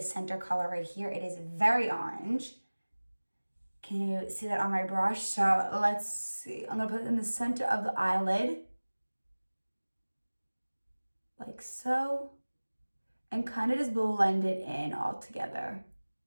center color right here. It is very orange. Can you see that on my brush? So let's see. I'm going to put it in the center of the eyelid, like so, and kind of just blend it in all together.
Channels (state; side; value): inverted; both; correlation -1.00